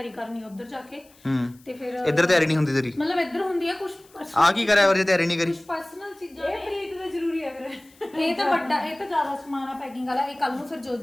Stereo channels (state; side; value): noise; left; hiss, 28 dB below the sound